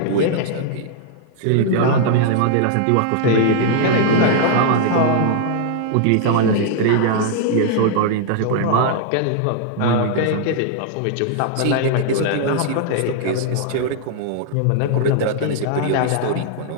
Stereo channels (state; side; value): different; both; correlation -0.01